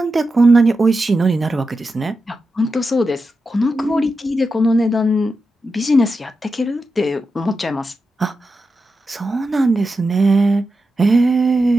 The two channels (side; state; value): both; normal; correlation 0.89